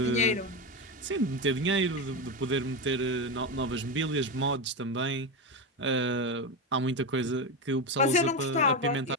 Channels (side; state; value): both; normal; correlation 0.14